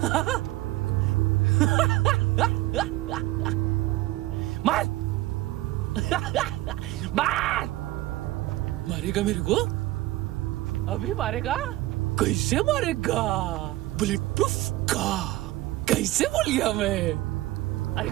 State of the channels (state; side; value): quieter; left; 17.3 dB